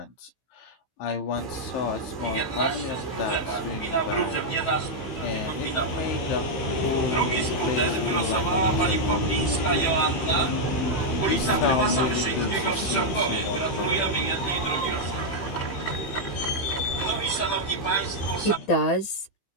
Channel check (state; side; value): late; right; 15 ms